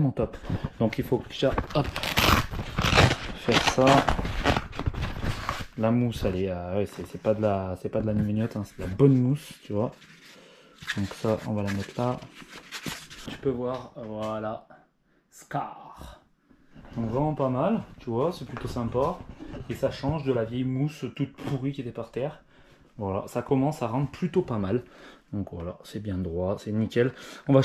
top. Donc, il faut déjà, hop, faire ça. La mousse, elle est, ouais, c'est pas de la mignotte, hein, c'est de la bonne mousse, tu vois. Donc ça, on va la mettre là. Tu peux voir, voilà, Scar. Donc vraiment pas mal, tu vois, c'est plutôt sympa. Et ça change de la vieille mousse toute pourrie qui était par terre. Voilà, ça commence à rendre plutôt pas mal. Donc voilà, c'est bien droit, c'est nickel.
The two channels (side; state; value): both; identical; correlation 1.00